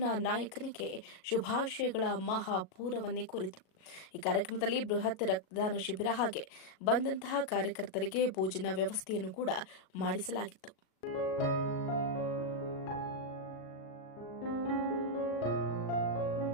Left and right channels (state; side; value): late; right; 37 ms